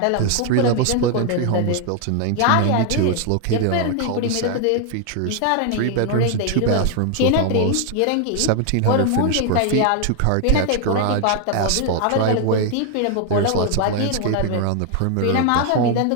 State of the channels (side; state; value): both; different; correlation 0.00